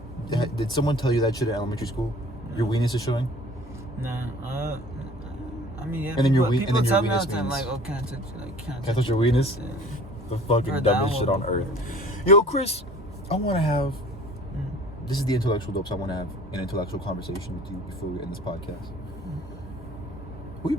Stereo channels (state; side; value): normal; both; correlation 0.47